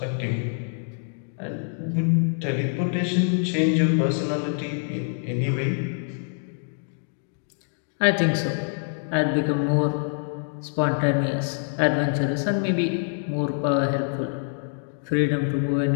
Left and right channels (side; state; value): right; silent; 58 dB below the other